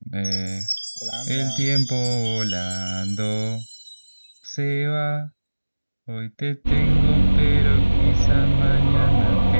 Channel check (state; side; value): inverted; both; correlation -1.00